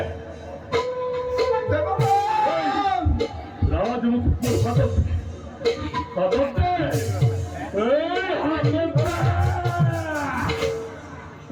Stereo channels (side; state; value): both; identical; correlation 1.00